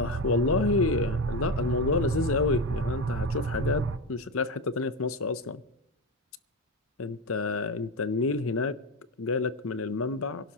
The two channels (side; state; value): both; normal; correlation 0.15